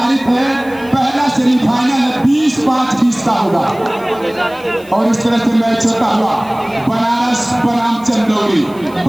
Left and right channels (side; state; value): left; noise; hiss, 24 dB below the sound